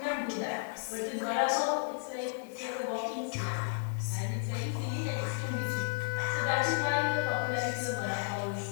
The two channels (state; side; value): silent; right; 56 dB below the other